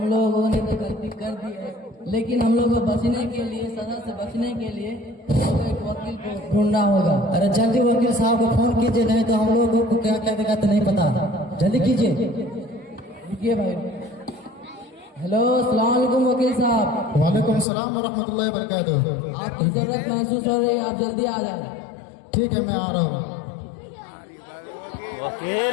लोगों ने तो गलती कर दी है, लेकिन हम लोग को बचने के लिए, सजा से बचने के लिए एक वकील को ढूंढना होगा। अरे जल्दी वकील साहब को फोन कीजिए, नहीं तो हम लोगों को क्या क्या देगा तो नहीं पता। जल्दी कीजिए। रुकिए भाई। हेलो, अस्सलाम वालेकुम वकील साहब। वालेकुम सलाम व रहमतुल्लाहि व बरकातुहू। आपकी जरूरत महसूस हो रही है, आप जल्दी आ जाए। ठीक है, मैं आ रहा हूँ।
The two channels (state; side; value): drops out; right; at 17.7 s